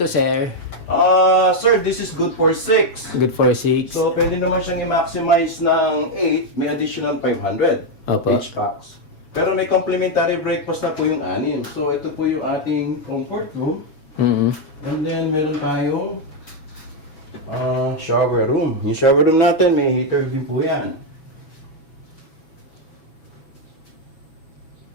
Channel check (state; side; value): late; right; 6.5 ms